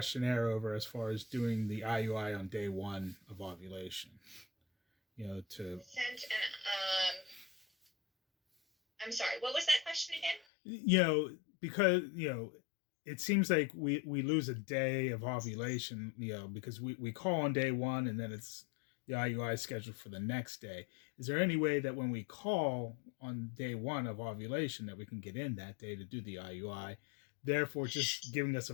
over as far as doing the IUI on day 1 of ovulation, I'm sorry, what was that question again? Because, it seems like we lose a day of ovulation, because we call on day 1 and then it's the IUI is scheduled for the next day. Is there any way that when we call on day 1 of ovulation that we can get in that day to do the IUI, therefore just giving us a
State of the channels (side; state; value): right; drops out; at 10.4 s